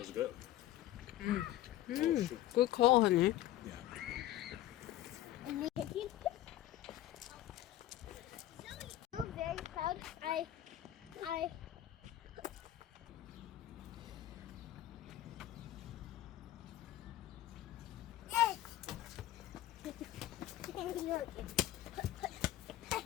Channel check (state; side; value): quieter; right; 14.0 dB